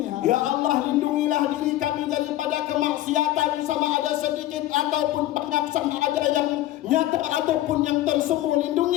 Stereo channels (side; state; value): right; quieter; 14.8 dB